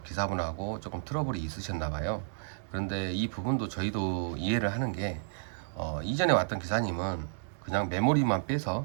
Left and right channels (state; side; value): silent; left; 57 dB below the other